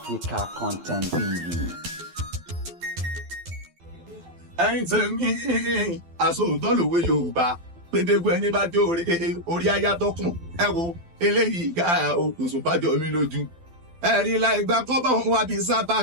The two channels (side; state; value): left; late; 12 ms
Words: Content TV. ẹ̀yin tèmi àsòótọ́ lòwe Yorùbá pédégbé ẹni bá jó orí ayátọ́kùn ẹ wo eléyìí ká Osupa jọ mi lójú ẹ̀rí láì gba kọ́bọ̀ wọn wá bí